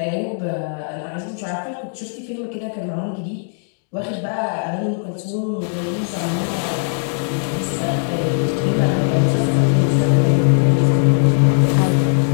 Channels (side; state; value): right; silent; digital silence